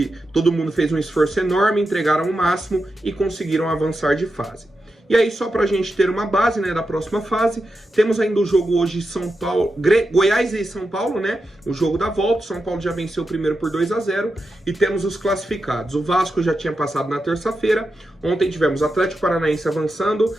todo mundo fez um esforço enorme, entregaram o máximo e conseguiram avançar de fase. E aí, só pra gente ter uma base, né, da próxima fase, temos ainda o jogo hoje São Paulo, Goiás e São Paulo, né, o jogo da volta. São Paulo já venceu o primeiro por 2-0 e temos os classificados. O Vasco já tinha passado na terça-feira, ontem tivemos Atlético Paranaense avançando,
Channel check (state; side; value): normal; both; correlation 0.88